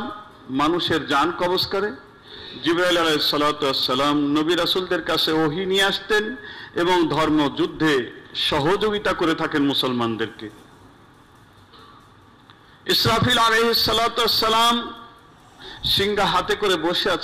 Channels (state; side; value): identical; both; correlation 1.00